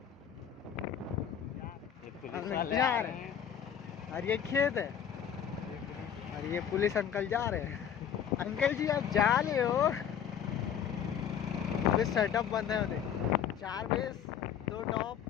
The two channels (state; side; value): quieter; right; 8.7 dB